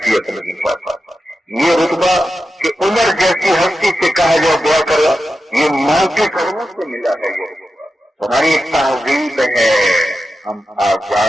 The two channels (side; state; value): both; normal; correlation 0.90